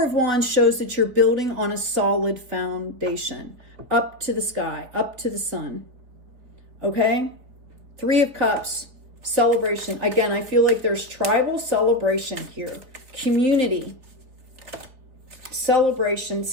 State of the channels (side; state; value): left; late; 4.0 ms